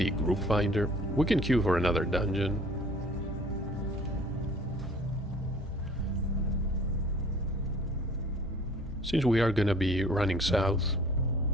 group finder. We can queue for another dungeon. Since we are gonna be running south,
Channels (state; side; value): normal; both; correlation 0.50